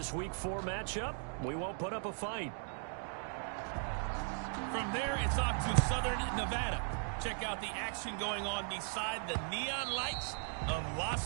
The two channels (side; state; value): left; silent; 52 dB below the other